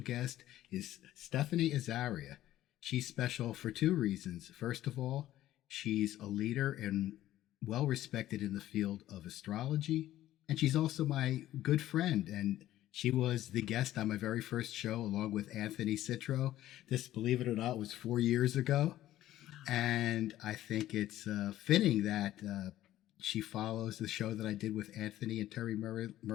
is Stephanie Azaria. She's special for two reasons. First of all, she's a leader and well-respected in the field of astrology, and she's also my good friend, and she was the guest on my very first show along with Anthony Citro. This, believe it or not, was 4 years ago. And I think it's fitting that she follows the show that I did with Anthony and Terry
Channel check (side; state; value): right; quieter; 13.9 dB